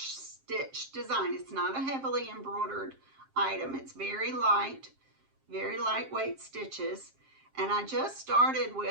stitch design. It's not a heavily embroidered item. It's very lightweight stitches. And I just started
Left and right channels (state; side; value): late; left; 7.5 ms